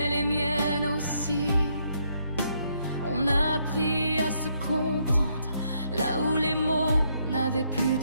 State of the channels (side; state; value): both; inverted; correlation -0.74